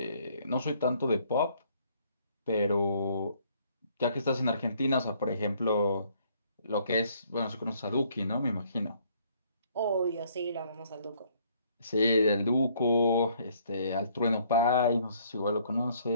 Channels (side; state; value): both; inverted; correlation -0.64